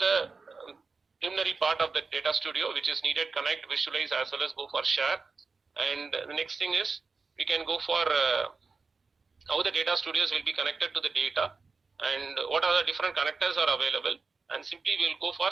preliminary part of the Data Studio which is needed, connect, visualize, as well as go for share. And the next thing is we can go for how the data studios will be connected to the data, and what are the different connectors are available, and simply we'll go for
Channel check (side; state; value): left; quieter; 4.4 dB